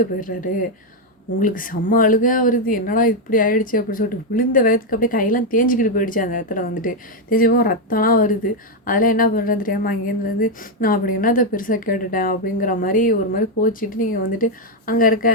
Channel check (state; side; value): normal; both; correlation 0.03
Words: போயிடுறாரு. உங்களுக்கு செம்ம அழுகையா வருது. என்னடா இப்படி ஆயிடுச்சு அப்படின்னு சொல்லிட்டு விழுந்த வேகத்துக்கு அப்படியே கையெல்லாம் தேஞ்சுக்கிட்டு போயிடுச்சு அந்த இடத்துல வந்துட்டு. தேஞ்சு போக ரத்தம்லாம் வருது. அதெல்லாம் என்ன பண்ணுறதுன்னு தெரியாம அங்கேருந்து வந்து, நான் அப்படி என்னத்த பெருசா கேட்டுட்டேன் அப்படிங்கிற மாரி ஒரு மாரி கோச்சிட்டு நீங்க வந்துட்டு அங்க இருக்க